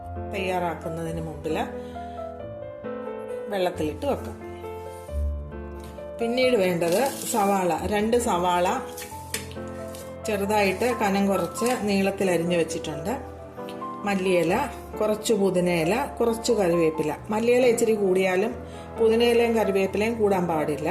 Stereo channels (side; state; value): both; identical; correlation 1.00